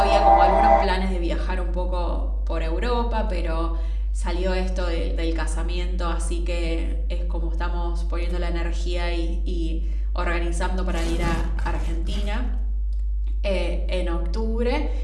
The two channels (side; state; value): both; identical; correlation 1.00